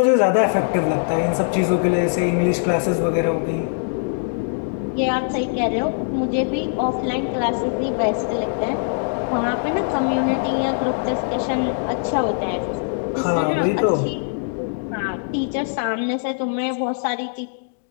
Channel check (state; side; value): silent; right; 64 dB below the other